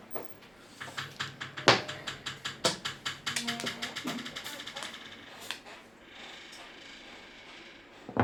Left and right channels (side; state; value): right; noise; hum, 28 dB below the sound